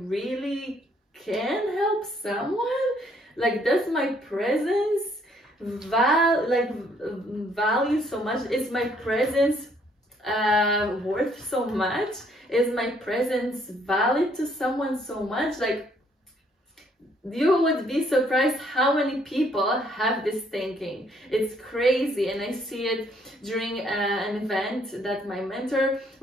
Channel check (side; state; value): both; normal; correlation 0.66